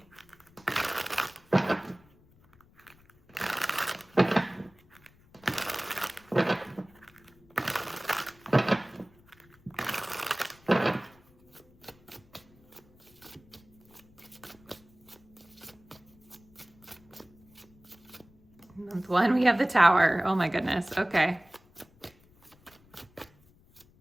Month 1, we have the Tower. Oh my goodness. Okay.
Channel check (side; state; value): left; noise; rumble, 29 dB below the sound